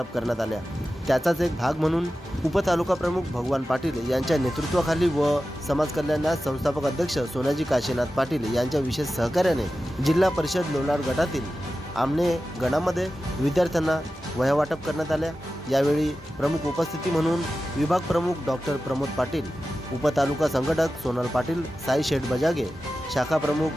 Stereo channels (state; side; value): normal; both; correlation 0.93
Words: करण्यात आल्या। त्याचाच एक भाग म्हणून उपतालुका प्रमुख भगवान पाटील यांच्या नेतृत्वाखाली व समाज कल्याण संस्थापक अध्यक्ष सोनाजी काशीनाथ पाटील यांच्या विशेष सहकार्याने जिल्हा परिषद लोणार गटातील आमने गणामध्ये विद्यार्थ्यांना वह्या वाटप करण्यात आल्या। यावेळी प्रमुख उपस्थिती म्हणून विभाग प्रमुख डॉक्टर प्रमोद पाटील, उपतालुका संघटक सोनल पाटील, साई शेठ बजागे, शाखा